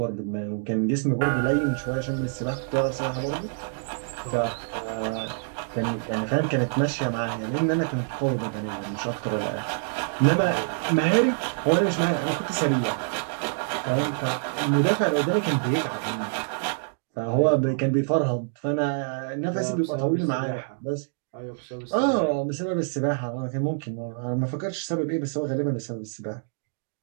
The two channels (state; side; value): silent; left; digital silence